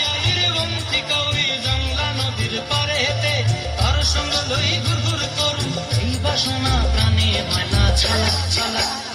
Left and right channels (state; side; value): identical; both; correlation 1.00